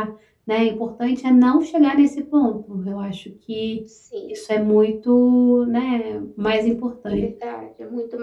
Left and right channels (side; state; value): both; identical; correlation 1.00